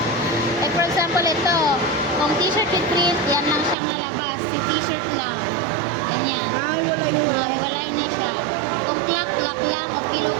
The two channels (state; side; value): drops out; left; at 3.8 s